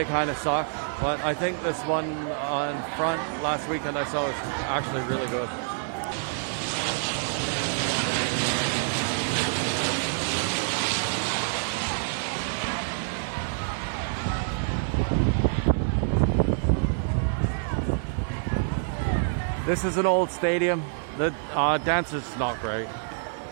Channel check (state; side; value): silent; left; 59 dB below the other